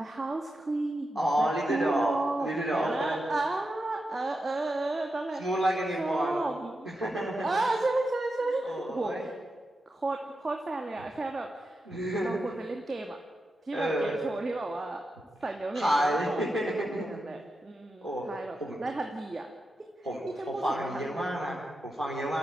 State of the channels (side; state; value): both; normal; correlation 0.88